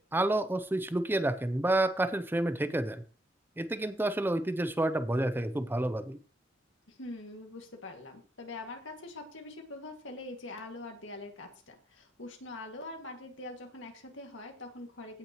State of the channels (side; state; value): both; normal; correlation 0.80